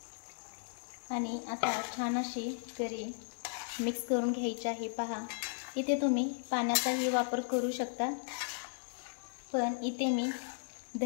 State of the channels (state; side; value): silent; right; digital silence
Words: आणि आता छान अशी करी मिक्स करून घ्यायची आहे। पहा, इथे तुम्ही पाण्याचाही वापर करू शकता, पण इथे मी